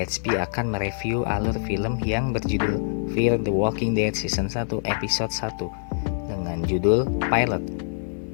HP akan mereview alur film yang berjudul Fear the Walking Dead Season 1 Episode 1 dengan judul Pilot.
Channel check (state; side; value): silent; right; digital silence